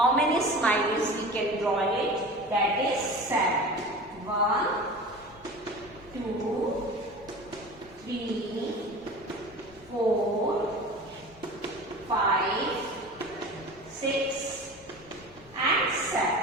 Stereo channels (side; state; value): both; normal; correlation 0.35